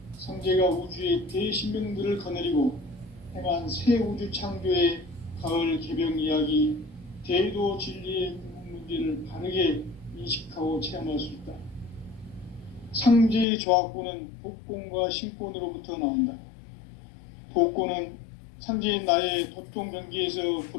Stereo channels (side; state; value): right; drops out; at 13.5 s